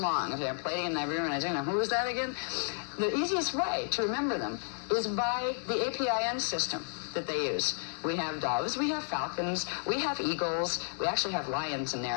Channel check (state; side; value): silent; right; 56 dB below the other